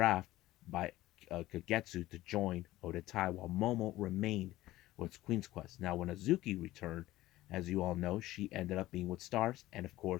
by Kagetsu to join Odatai, while Momo remained with Queen's Quest. Now, when Azuki returned, as you all know, she ended up being with Stars, and of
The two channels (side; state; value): right; quieter; 16.5 dB